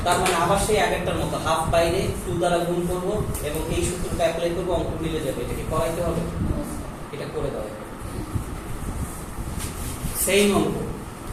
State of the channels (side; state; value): both; identical; correlation 1.00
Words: তার মানে আবার সেই আগেরটার মতো হাফ বাইরে 2 দ্বারা গুণ করব এবং এই সূত্রটা অ্যাপ্লাই করব, অঙ্ক মিলে যাবে। এটা কি করাইতে হবে, এটা করে দাও, সেই অঙ্ক